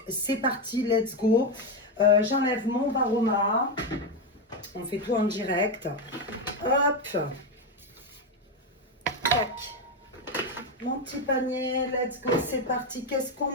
c'est parti, let's go. J'enlève mon varoma, on fait tout en direct. Hop, tac, mon petit panier, let's go, c'est parti. Qu'est-ce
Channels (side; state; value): both; normal; correlation 0.09